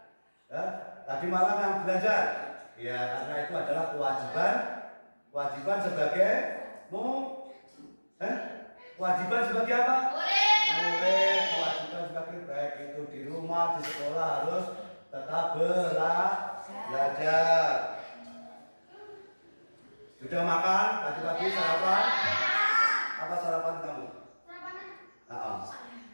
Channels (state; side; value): inverted; both; correlation -1.00